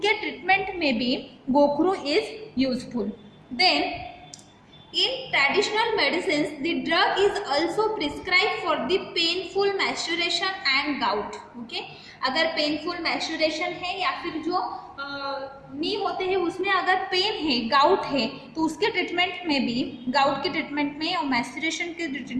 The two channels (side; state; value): both; identical; correlation 1.00